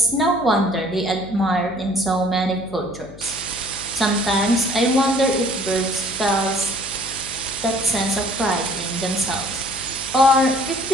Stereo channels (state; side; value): noise; left; hum, 18 dB below the sound